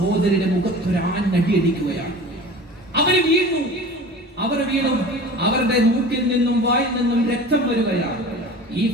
മുഖത്തൊരാഞ്ഞടിക്കുകയാണ്. അവർ വീണു. അവരുടെ മൂക്കിൽ നിന്നും വായിൽ നിന്നും രക്തം വരികയാണ്. ഈ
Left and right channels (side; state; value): both; normal; correlation 0.38